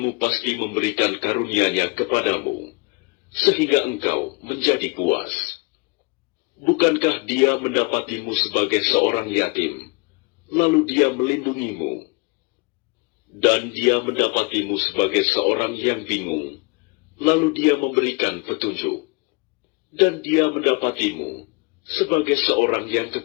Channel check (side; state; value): right; quieter; 28.9 dB